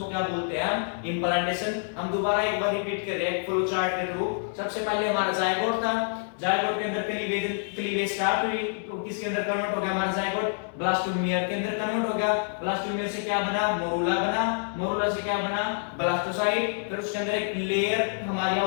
क्या बोलते हैं हम, इम्प्लांटेशन। हम दोबारा एक बार रिपीट कर रहे हैं फ्लो चार्ट के थ्रू। सबसे पहले हमारा जायगोट था, जायगोट के अंदर क्लीवेज स्टार्ट हुई, तो किसके अंदर कन्वर्ट हो गया हमारा जायगोट, ब्लास्टोमियर के अंदर कन्वर्ट हो गया। ब्लास्टोमियर से क्या बना, मोरूला बना, मोरूला से क्या बना, ब्लास्टोसाइट। फिर उसके अंदर एक लेयर हमारी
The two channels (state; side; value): silent; right; 60 dB below the other